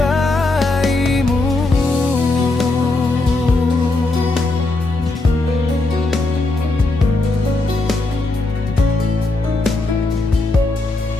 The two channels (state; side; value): quieter; right; 3.1 dB